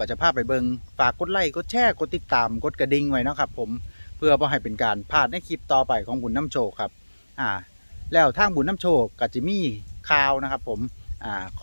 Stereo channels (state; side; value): inverted; both; correlation -1.00